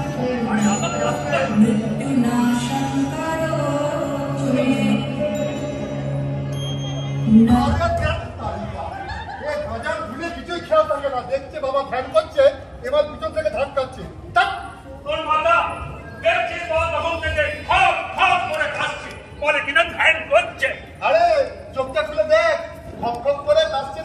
मृत्युनाशं करोतु मे দেখছে বাবা ধ্যান করছে এবার পিছন থেকে ধাক্কাচ্ছে তোর মাথা দেখছিস বাবা তখন থেকে খপ খপ করে খাচ্ছে বলে কিনা ধ্যান করছে। আরে চোখটা খুলে দেখ খপ খপ করে কাশছে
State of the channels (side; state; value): both; identical; correlation 1.00